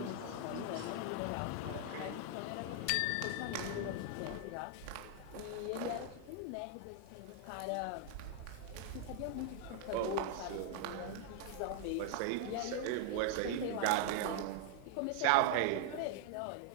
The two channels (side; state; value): both; different; correlation 0.00